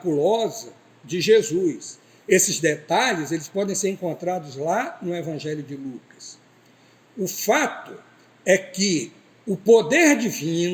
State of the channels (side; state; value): both; identical; correlation 1.00